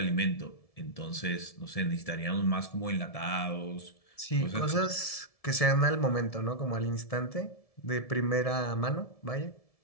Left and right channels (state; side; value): late; right; 1.7 ms